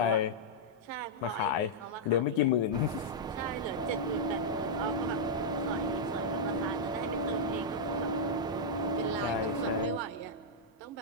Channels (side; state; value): both; normal; correlation -0.06